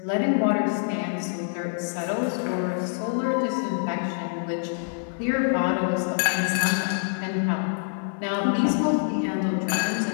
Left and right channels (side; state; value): right; silent; digital silence